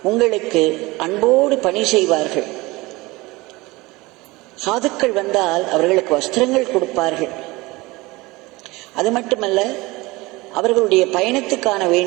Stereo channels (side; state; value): left; quieter; 22.1 dB